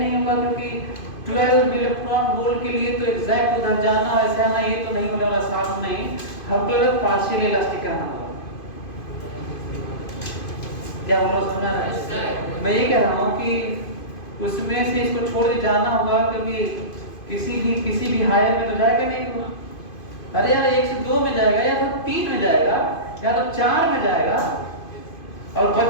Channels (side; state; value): right; late; 2.5 ms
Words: होगा, क्योंकि 12 इलेक्ट्रॉन वोल्ट के लिए तो एग्जैक्ट उधर जाना ऐसे आना ये तो नहीं होने वाला, साफ नहीं, हमको लगता है पार्शियली इलास्टिक कहना होगा। क्या बोलो, समझ रहा है? मैं ये कह रहा हूँ कि उसमें से इसको छोड़ के जाना होगा, क्योंकि किसी भी हायर में तो जाएगा नहीं होगा। अरे यार 1 से 2 में जाएगा, या तो 3 में जाएगा, या तो 4 में जाएगा, और